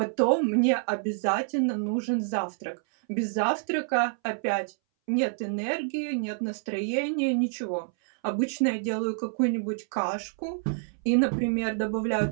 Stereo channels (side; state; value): left; silent; 60 dB below the other